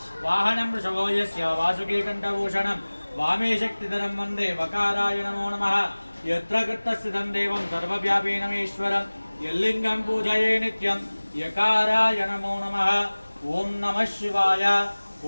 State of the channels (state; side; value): inverted; both; correlation -1.00